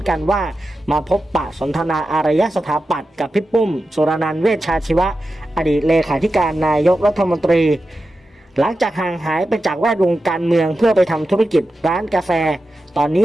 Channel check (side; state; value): both; normal; correlation 0.91